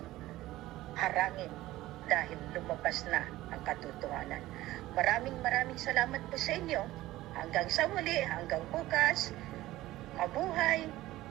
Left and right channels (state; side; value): quieter; left; 16.4 dB